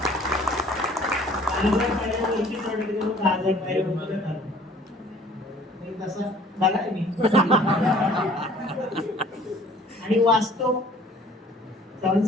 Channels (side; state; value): both; normal; correlation 0.53